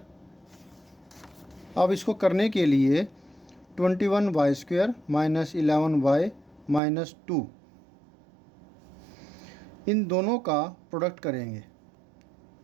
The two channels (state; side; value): drops out; left; at 6.8 s